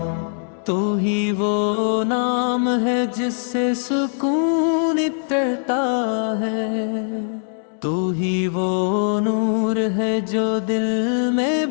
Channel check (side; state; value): right; silent; digital silence